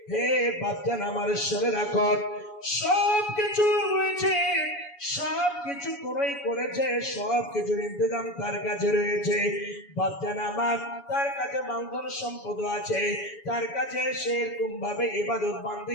হে বাপজান আমার, শুনে রাখো, সব কিছু রয়েছে, সব কিছু কোনই করেছে, সব কিছুর ইন্তজাম তার কাছে রয়েছে। বাপজান আমার, তার কাছে মালধন সম্পদ আছে, তার কাছে সেরকম ভাবে ইবাদত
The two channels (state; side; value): late; right; 7.1 ms